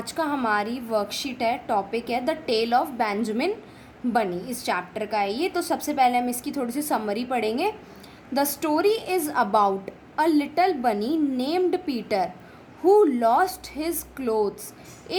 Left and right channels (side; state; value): both; identical; correlation 1.00